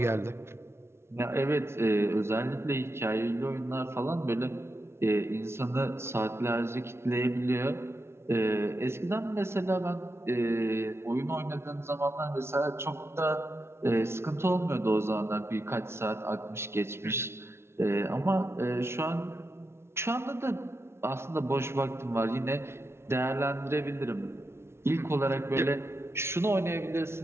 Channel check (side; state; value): left; late; 0.12 ms